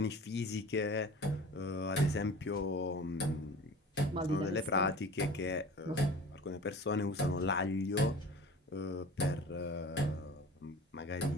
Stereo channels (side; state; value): both; normal; correlation 0.40